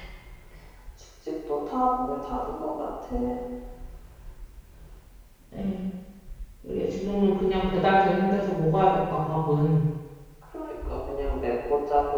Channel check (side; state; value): both; identical; correlation 1.00